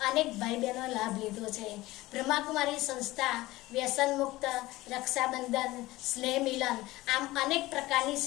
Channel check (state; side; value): quieter; right; 18.6 dB